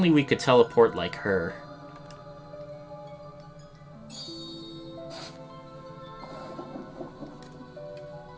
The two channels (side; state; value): both; identical; correlation 1.00